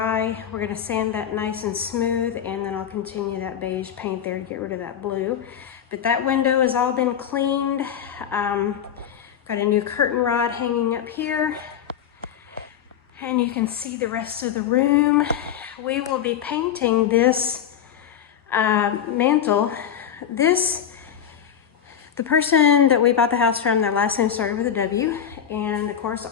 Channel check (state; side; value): quieter; right; 9.0 dB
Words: We're gonna sand that nice and smooth, and then I'll continue that beige paint there to get rid of that blue. But that window has all been cleaned. Got a new curtain rod hanging up here, and you can see the rest of the room. We will be painting this mantle. The person that we bought the house from, their last name started with a W, and of course